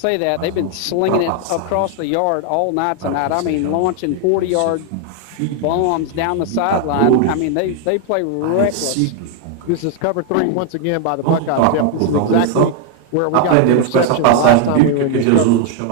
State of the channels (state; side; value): different; both; correlation 0.00